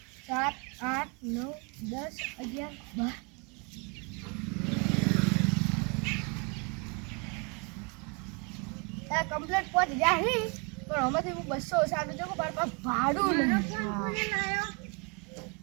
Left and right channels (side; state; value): left; quieter; 32.8 dB